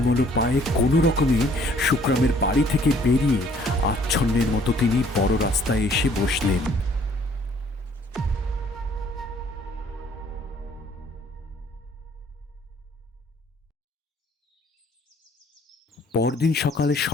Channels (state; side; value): normal; both; correlation 0.59